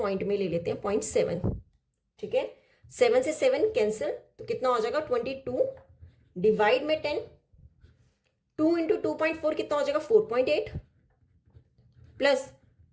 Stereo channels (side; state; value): both; identical; correlation 1.00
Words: में ले लेते हैं 0.7, ठीक है। 7 से 7 कैंसिल, तो कितना हो जाएगा 22 डिवाइड में 10, 2 इंटू 2.4 कितना हो जाएगा 4.8 प्लस